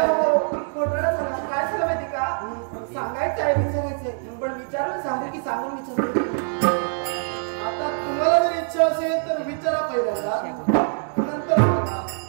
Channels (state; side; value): silent; left; 57 dB below the other